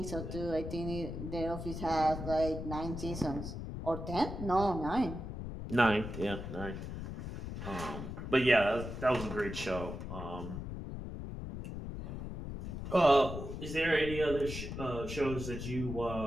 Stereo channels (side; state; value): left; noise; rumble, 7 dB below the sound